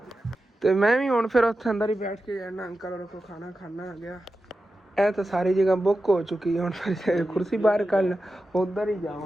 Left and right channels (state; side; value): normal; both; correlation 0.92